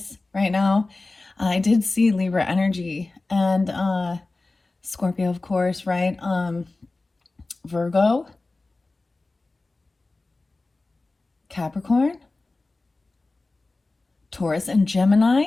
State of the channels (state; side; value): quieter; right; 3.3 dB